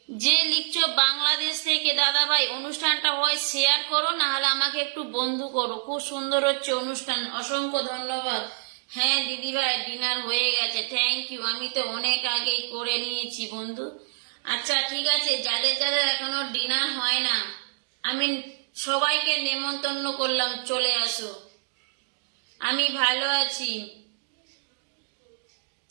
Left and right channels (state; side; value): silent; left; digital silence